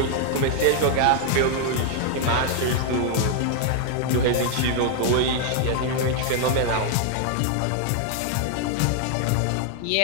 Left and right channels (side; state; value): both; different; correlation 0.00